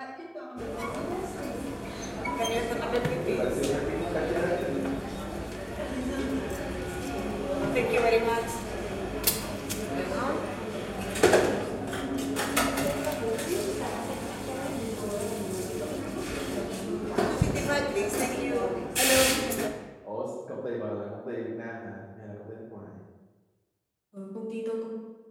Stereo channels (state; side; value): identical; both; correlation 1.00